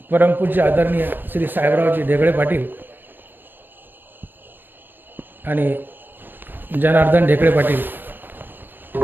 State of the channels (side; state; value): left; late; 0.094 ms